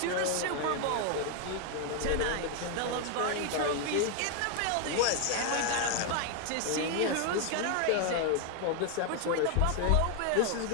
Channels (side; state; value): both; different; correlation 0.01